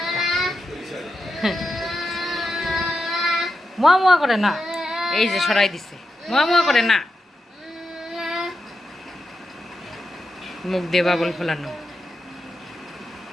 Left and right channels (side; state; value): both; normal; correlation 0.88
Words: মোয়া মোয়া করে না, এই যে সরাই দিছে। মোয়া মোয়া করে না, মুখ দিয়ে বাবল ফোলানো।